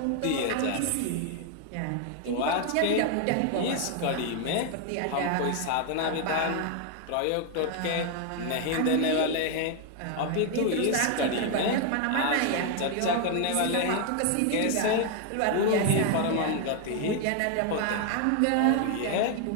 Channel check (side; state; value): both; different; correlation 0.01